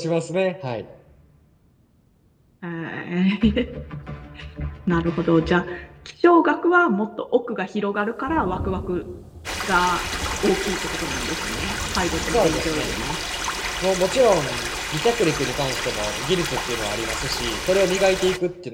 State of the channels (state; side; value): identical; both; correlation 1.00